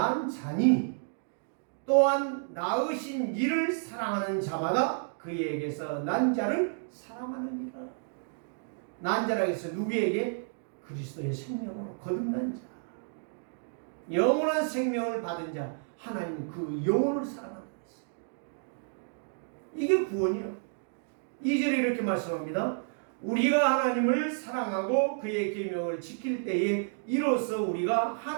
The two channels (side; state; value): left; silent; digital silence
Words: 자니 또한 낳으신 이를 사랑하는 자마다 그에게서 난 자를 사랑하느니라. 난 자라고 해서 누구에게? 그리스도의 생명으로 거듭난 자, 영원한 생명을 받은 자, 하나님 그 영혼을 사랑한다. 이게 구원이에요. 2절에 이렇게 말씀합니다. 우리가 하나님을 사랑하고 그의 계명을 지킬 때에 이로써 우리가